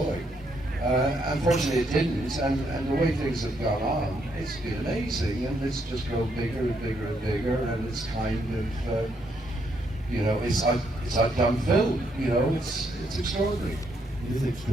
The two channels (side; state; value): both; normal; correlation 0.75